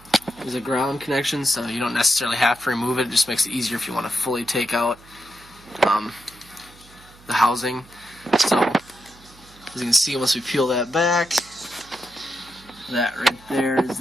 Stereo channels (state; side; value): noise; right; hum, 24 dB below the sound